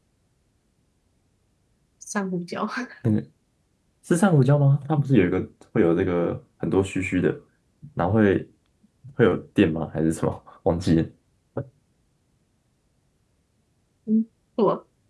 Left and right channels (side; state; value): both; identical; correlation 1.00